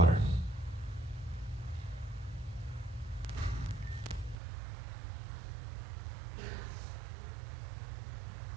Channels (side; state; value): left; drops out; at 4.4 s